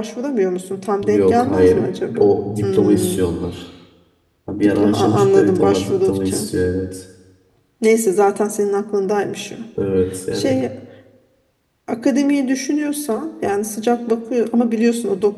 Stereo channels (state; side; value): identical; both; correlation 1.00